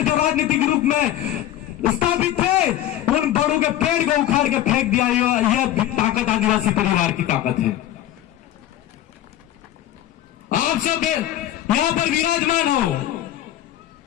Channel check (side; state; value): right; quieter; 12.8 dB